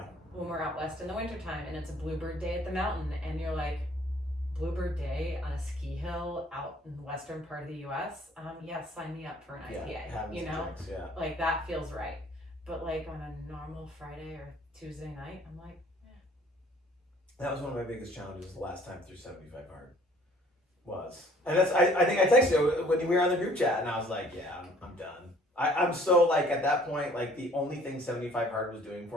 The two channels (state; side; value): normal; both; correlation 0.56